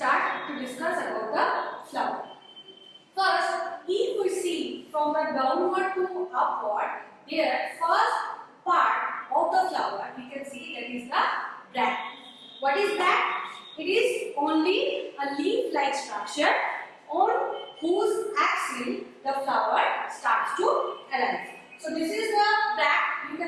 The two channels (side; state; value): both; identical; correlation 1.00